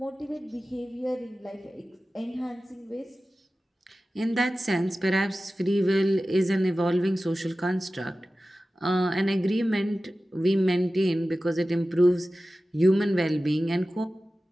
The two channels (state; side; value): normal; both; correlation 0.95